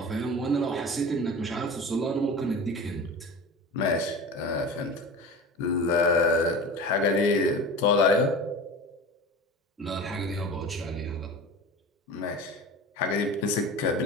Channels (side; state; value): both; normal; correlation 0.34